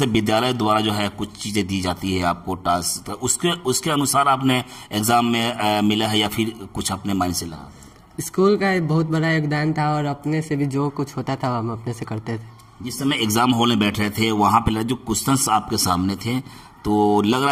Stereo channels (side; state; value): both; identical; correlation 1.00